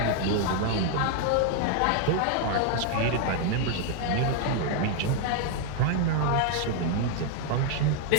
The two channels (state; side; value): different; both; correlation 0.00